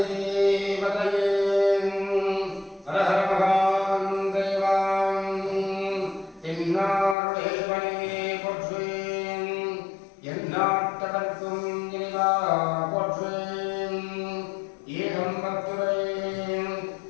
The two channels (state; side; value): drops out; right; at 7.2 s